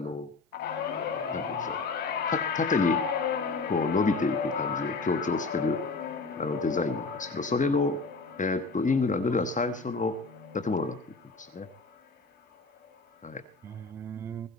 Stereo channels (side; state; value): right; quieter; 3.9 dB